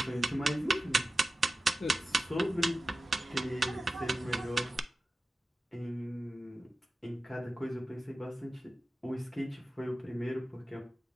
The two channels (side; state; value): both; normal; correlation 0.94